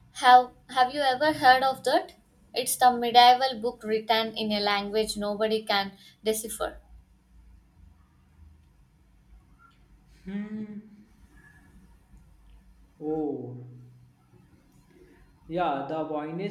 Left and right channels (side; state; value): both; identical; correlation 1.00